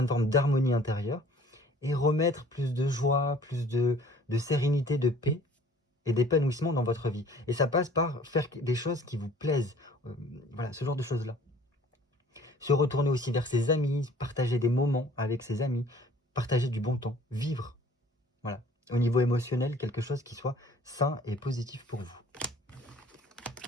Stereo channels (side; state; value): both; normal; correlation 0.52